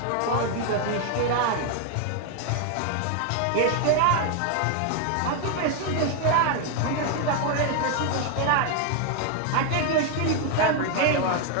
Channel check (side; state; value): both; different; correlation 0.01